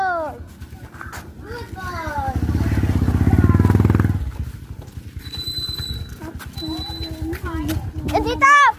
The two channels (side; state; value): both; identical; correlation 1.00